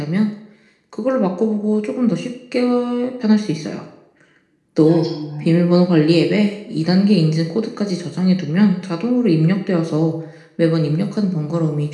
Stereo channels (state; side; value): identical; both; correlation 1.00